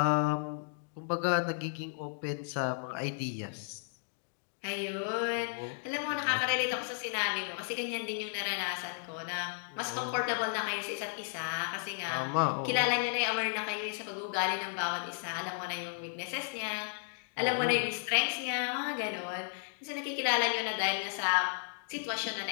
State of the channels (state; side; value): silent; right; digital silence